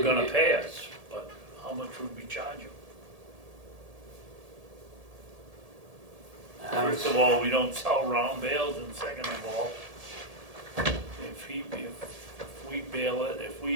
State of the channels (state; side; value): late; left; 1.7 ms